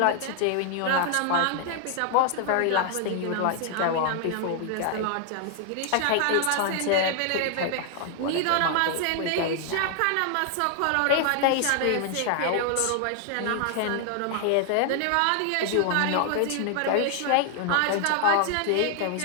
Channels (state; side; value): different; both; correlation 0.00